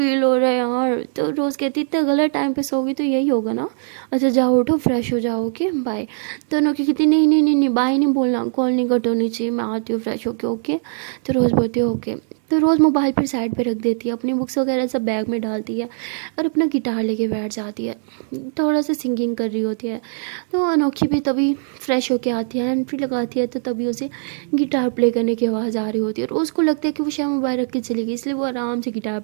हो रहा है यार। तो रोज़ कहती इतना गलत टाइम पे सोगी तो यही होगा ना। अच्छा जाओ उठो फ्रेश हो जाओ ओके बाय। तो अनोखी कहती नहीं नहीं नहीं नहीं बाय नहीं बोलना, कॉल नहीं कट होनी चाहिए, मैं आती हूँ फ्रेश होके ओके। तो रोज़ बोलती है ओके। तो रोज़ मोबाइल पर साइड पे रख देती है, अपनी बुक्स वगैरह सब बैग में डालती है और अपना गिटार लेके बैठ जाती है, थोड़ा सा सिंगिंग कर रही होती है। तो अनोखी भी तभी फ्रेश होके आती है, हैंड फ्री लगाती है, तो तभी उसे गिटार प्ले करने की आवाज़ आ रही होती है और उसको लगता है कि वो शायद मोबाइल रख के चली गई, इसलिए वो आराम से गिटार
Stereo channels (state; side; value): silent; left; 65 dB below the other